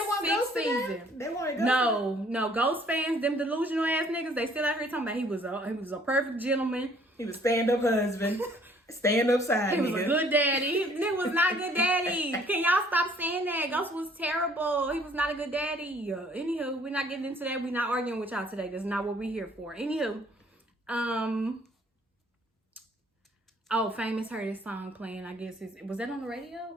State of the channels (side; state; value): both; normal; correlation 0.60